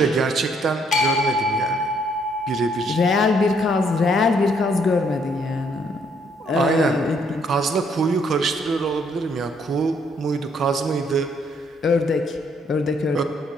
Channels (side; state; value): both; normal; correlation 0.68